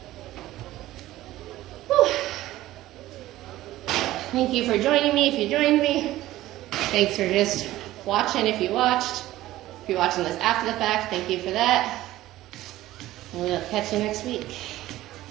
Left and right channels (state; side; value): quieter; left; 15.6 dB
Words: Whew. Thank you for joining me if you joined me. Thanks for just watching if you watched. If you're watching this after the fact, thank you for that. And we'll catch you next week.